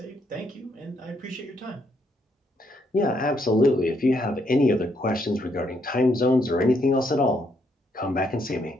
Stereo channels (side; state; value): both; normal; correlation 0.74